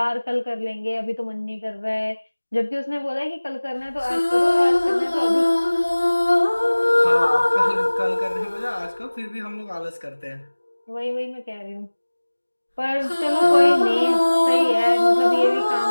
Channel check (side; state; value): both; inverted; correlation -1.00